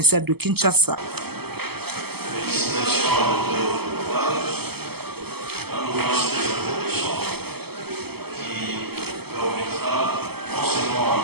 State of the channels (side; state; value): left; late; 0.96 ms